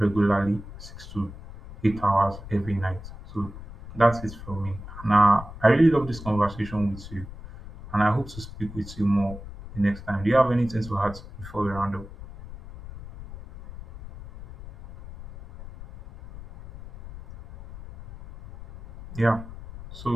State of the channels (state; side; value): noise; left; rumble, 14 dB below the sound